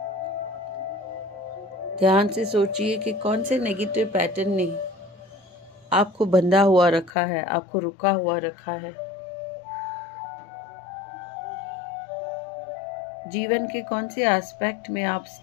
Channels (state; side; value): drops out; right; at 7.1 s